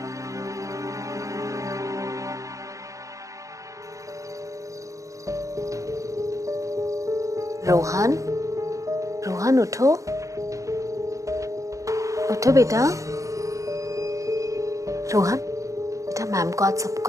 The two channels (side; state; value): left; late; 0.16 ms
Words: रोहन, रोहन उठो, उठो बेटा। रोहन बेटा, मैम को आज सब